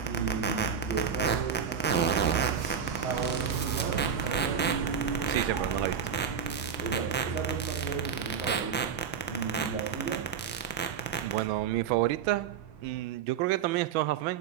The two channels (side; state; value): left; quieter; 7.4 dB